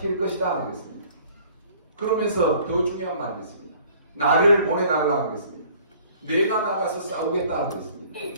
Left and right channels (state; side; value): inverted; both; correlation -0.54